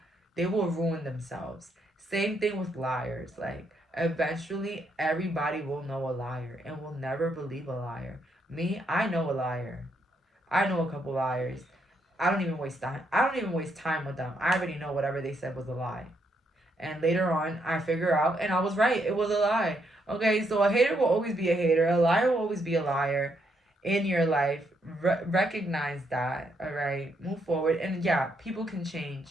ruin themselves. Same thing with liars. Like, eventually, everybody will know a liar and will never believe a liar. Me, I know a liar. I know a couple liars. I don't even waste time with them. I already know whatever they said was a lie. And later on, I figure out, and I was right. It was a lie. Okay, so a hater will always be a hater. A liar will always be a liar in your life. Recognize that, all right? Move forward. And yeah, people can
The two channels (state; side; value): normal; both; correlation 0.76